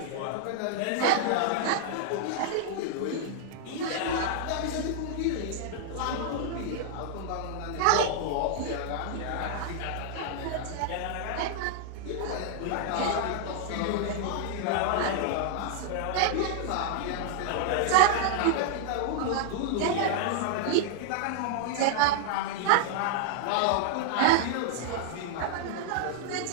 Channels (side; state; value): both; different; correlation -0.01